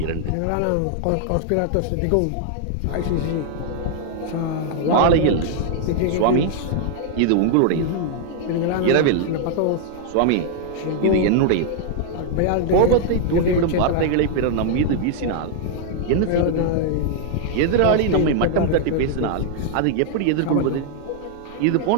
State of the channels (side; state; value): both; different; correlation 0.00